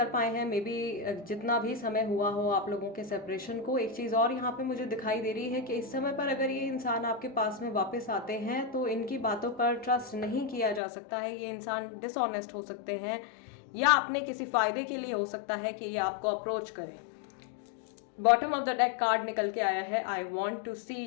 पाए हैं। मे बी जितना भी समय हुआ हो आप लोगों के सेपरेशन को। एक चीज़ और यहाँ पे मुझे दिखाई दे रही है कि इस समय पर अगर ये इंसान आपके पास में वापस आते हैं तो इनकी बातों पर ट्रस्ट नहीं किया जा सकता है। ये इंसान डिसऑनेस्ट हो सकते हैं या अपने किसी फायदे के लिए हो सकता है कि ये आपको अप्रोच करें। Bottom of the deck card निकल के आया है, I want to see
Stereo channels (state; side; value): drops out; right; at 10.8 s